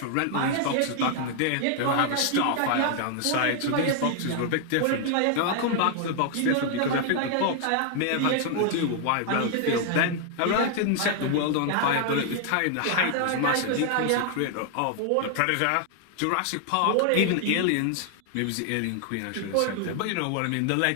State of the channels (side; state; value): both; different; correlation 0.00